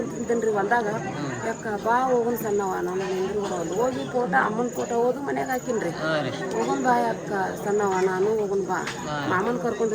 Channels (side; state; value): both; identical; correlation 1.00